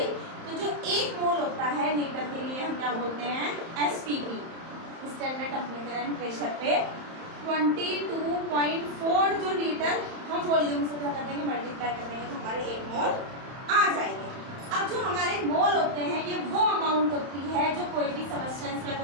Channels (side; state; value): left; late; 31 ms